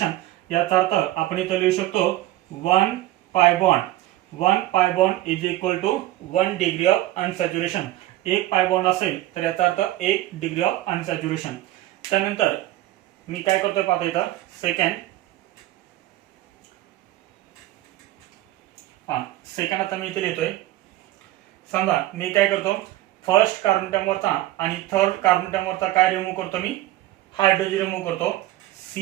याचा अर्थ आपण इथं लिहू शकतो 1 pi bond. 1 pi bond is equal to 1 degree of unsaturation. एक पाय बॉन्ड असेल तर याचा अर्थ 1 डिग्री ऑफ अनसॅच्युरेशन. त्यानंतर मी काय करतोय पाहता इथं सेकंड आता मी इथे लिहितोय. समजा मी काय करतो, फर्स्ट कार्बन अटॉम वरचा आणि थर्ड कार्बन अटॉम वरचा काय रिमूव्ह करतो, मी हायड्रोजन रिमूव्ह करतो.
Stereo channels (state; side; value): quieter; left; 15.7 dB